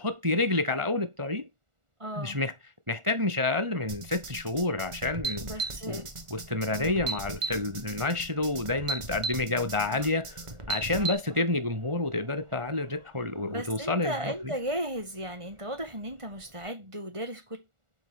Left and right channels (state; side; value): late; left; 1.4 ms